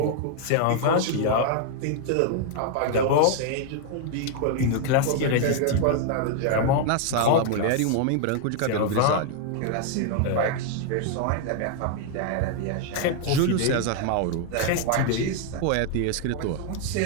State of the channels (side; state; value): both; different; correlation 0.00